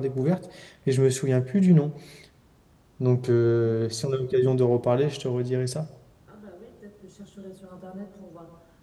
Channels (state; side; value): identical; both; correlation 1.00